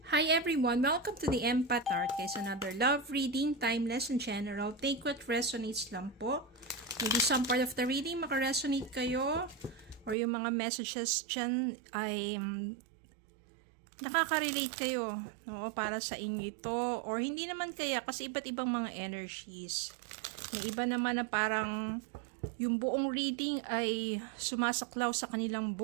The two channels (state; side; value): drops out; left; at 10.2 s